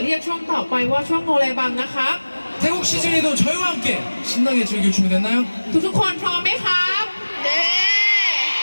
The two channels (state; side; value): inverted; both; correlation -1.00